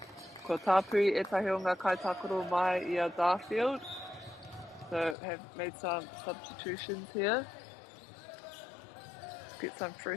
Ko tāpui etahi o ngā kaitakoro mai I a Darfield. So have made some substitutions here. Get some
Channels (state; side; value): drops out; right; at 5.2 s